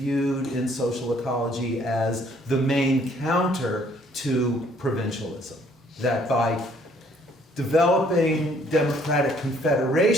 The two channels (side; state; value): both; normal; correlation 0.63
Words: in social ecology as the main counter to provincialism. That by developing democratic